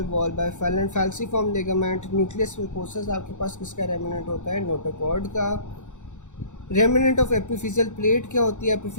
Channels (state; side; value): late; right; 0.84 ms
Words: wall by falciform ligament। Nucleus mucosus आपके पास किसका रेमिनेंट होता है, नोटोकॉर्ड का। रेमिनेंट ऑफ एपिफिजियल प्लेट क्या होती है,